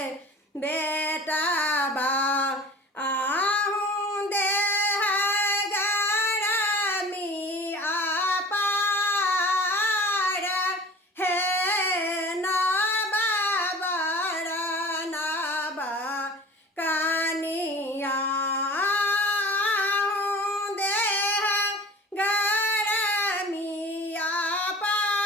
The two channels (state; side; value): normal; both; correlation 0.42